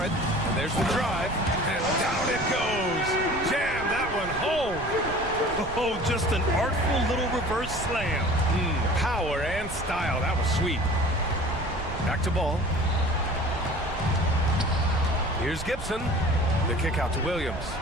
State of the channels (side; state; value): right; noise; rumble, 11 dB below the sound